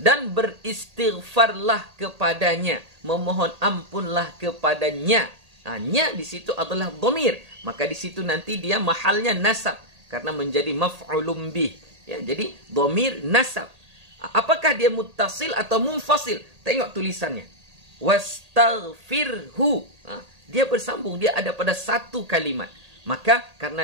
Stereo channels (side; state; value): left; late; 1.8 ms